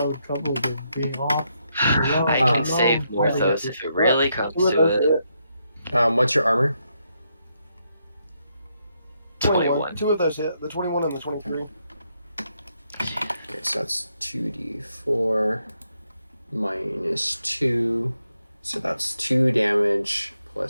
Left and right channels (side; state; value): both; inverted; correlation -0.79